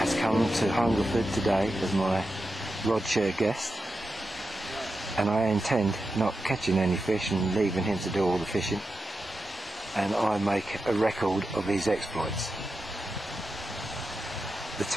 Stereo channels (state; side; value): normal; both; correlation 0.90